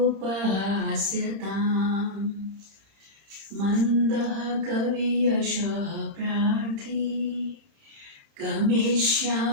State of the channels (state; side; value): late; left; 30 ms